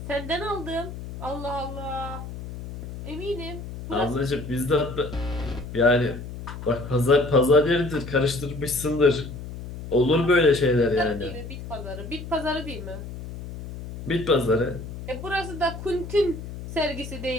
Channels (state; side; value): noise; left; hum, 10 dB below the sound